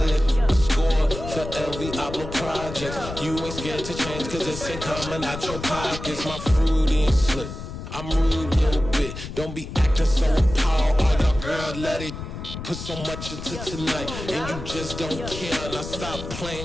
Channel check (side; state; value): left; noise; rumble, 9 dB below the sound